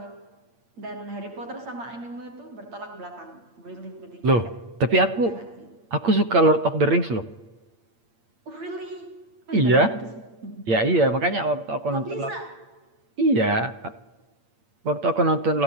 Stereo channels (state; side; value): late; left; 8.7 ms